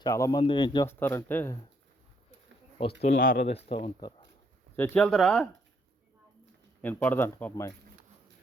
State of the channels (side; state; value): both; normal; correlation 0.71